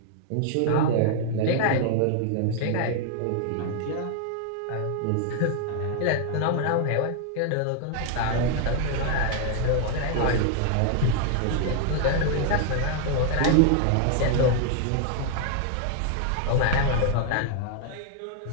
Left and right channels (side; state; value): both; different; correlation 0.00